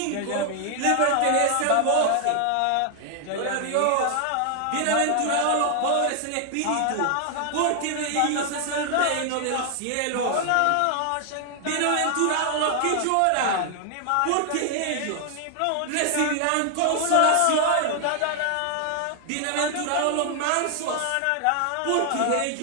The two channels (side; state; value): both; different; correlation 0.00